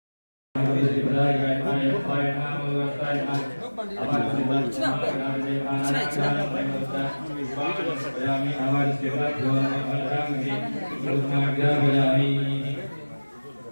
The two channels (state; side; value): inverted; both; correlation -1.00